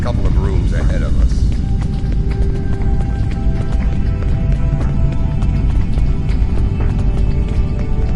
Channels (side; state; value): both; identical; correlation 1.00